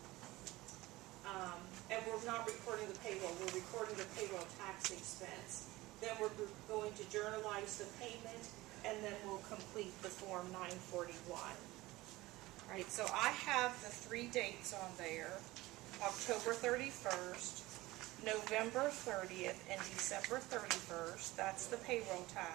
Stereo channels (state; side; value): quieter; left; 19.2 dB